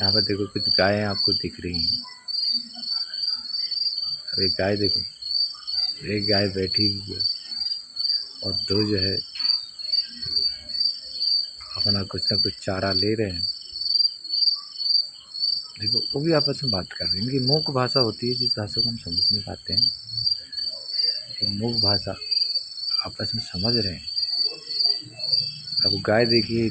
पर देखो कुछ गायें आपको दिख रही हैं। अब एक गाय देखो, एक गाय बैठी हुई है और दो जो है अपना कुछ ना कुछ चारा ले रहे हैं। देखो वो भी आपस में बात कर रहे हैं। इनकी मूक भाषा होती है जिस भाषा को हम समझ नहीं पाते हैं। ये मूक भाषा आपस में समझ रहे हैं। अब गाय देखिए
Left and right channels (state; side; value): identical; both; correlation 1.00